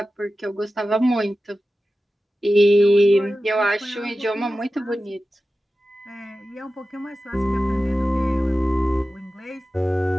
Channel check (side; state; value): both; normal; correlation 0.94